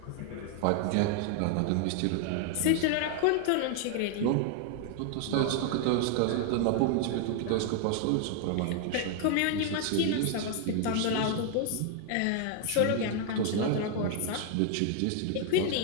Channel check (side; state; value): both; different; correlation 0.00